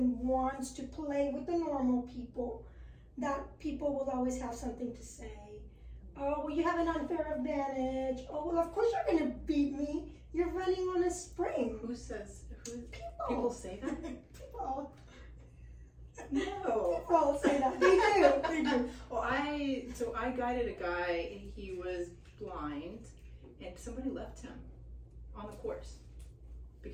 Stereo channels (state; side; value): identical; both; correlation 1.00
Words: wants to play with the normal people, that people will always have something to say. Oh, well, you have an unfair advantage. Oh, well, of course you're going to beat me. You're running on a spring. Who people say that? People. No. People say that. They do. Well, I guided a guy. He was blind, and somebody left him on the course